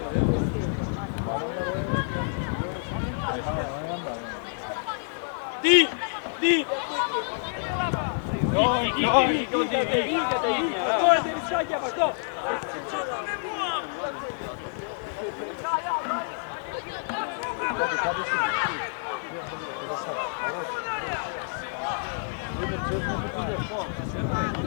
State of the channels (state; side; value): silent; right; digital silence